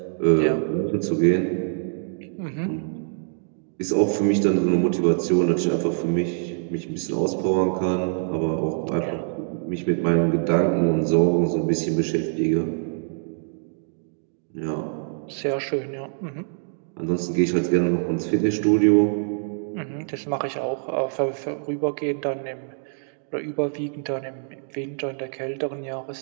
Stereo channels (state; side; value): silent; left; digital silence